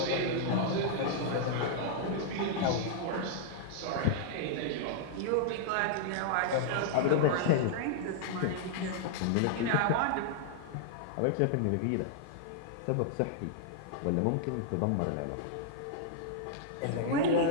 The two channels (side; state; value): both; different; correlation -0.01